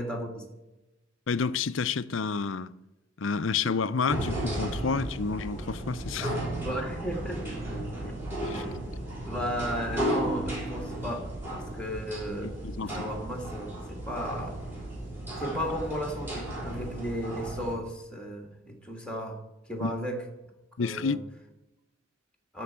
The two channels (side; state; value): both; normal; correlation 0.44